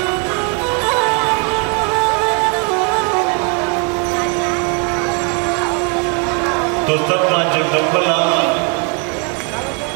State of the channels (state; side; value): quieter; left; 36.2 dB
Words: तो सब माँ जगदम्बा